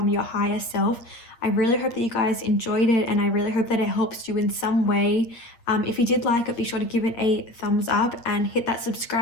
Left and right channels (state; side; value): late; right; 8.6 ms